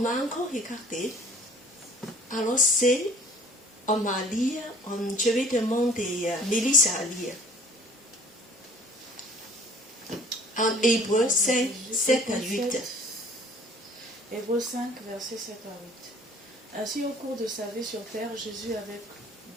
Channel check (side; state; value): both; normal; correlation 0.50